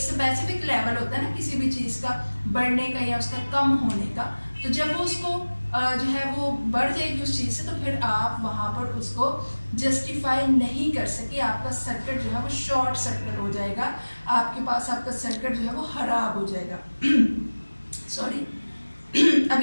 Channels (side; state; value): both; inverted; correlation -1.00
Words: लेवल होता है ना किसी भी चीज़ का बढ़ने का या उसका कम होने का, तो जब वो उसको जो है वो बढ़ जाएगी उस चीज़ से, तो फिर आप वहाँ पर उसको जस्टिफाई नहीं कर सके, आपका सर्किट जो है वो शॉर्ट सर्किट हो जाएगा, आपके पास आपका सर्किट जो है वो खराब हो जाएगा। सॉरी। अब